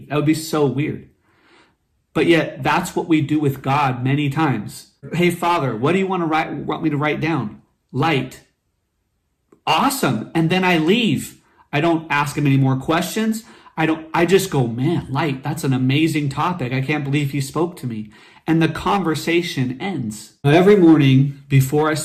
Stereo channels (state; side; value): identical; both; correlation 1.00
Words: That would be so weird. But yet that's what we do with God many times. Hey, Father, what do you want me to write down? Light. Awesome. And then I leave. I don't ask him any more questions. I just go, man, light, that's an amazing topic. I can't believe he spoke to me. And the conversation ends. Now, every morning before I